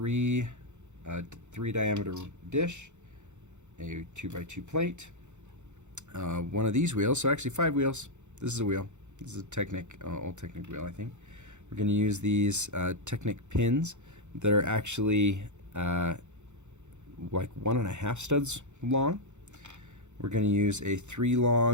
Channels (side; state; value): left; late; 0.83 ms